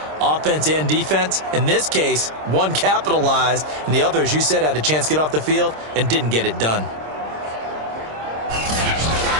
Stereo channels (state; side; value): late; left; 26 ms